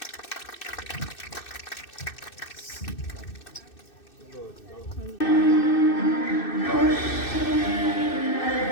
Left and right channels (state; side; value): late; right; 2.6 ms